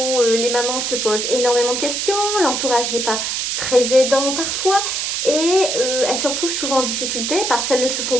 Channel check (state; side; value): noise; right; hiss, 1 dB below the sound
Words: les mamans se posent énormément de questions, l'entourage n'est pas très aidant parfois, et elles se retrouvent souvent en difficulté parce qu'elles ne se font